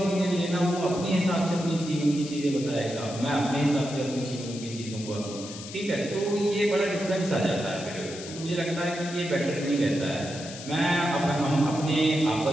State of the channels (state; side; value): noise; left; hiss, 13 dB below the sound